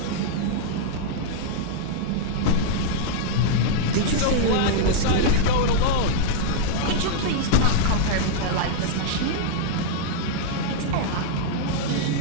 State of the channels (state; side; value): different; both; correlation -0.02